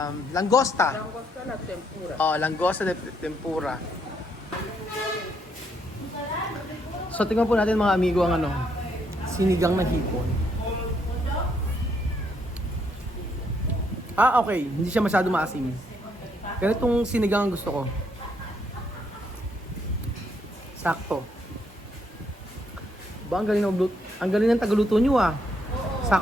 Langosta. Langosta la tempura. Langosta de tempura. So, tingnan po natin mga amigo ang sinigang na hipon. Okay. Hindi siya masyado maasim. Ganitong sinigang ang gusto ko. Ba, ang galing ang galing ng tagaluto nyo ah.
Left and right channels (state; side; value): normal; both; correlation 0.73